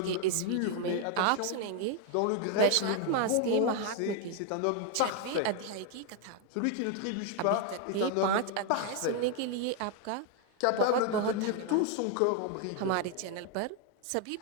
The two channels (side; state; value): both; different; correlation 0.00